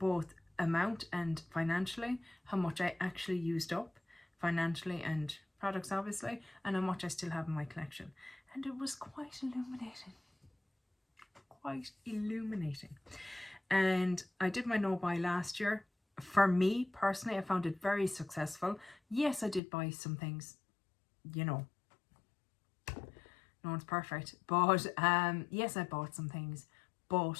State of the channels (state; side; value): drops out; right; at 19.6 s